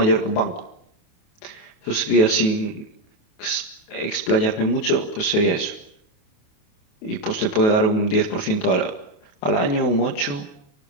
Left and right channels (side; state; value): right; late; 28 ms